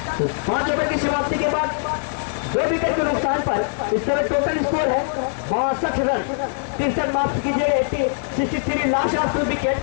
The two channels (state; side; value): silent; right; digital silence